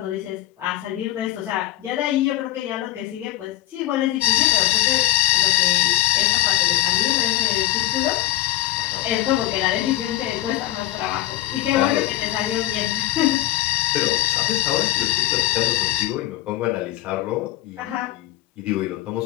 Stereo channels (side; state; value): right; quieter; 15.1 dB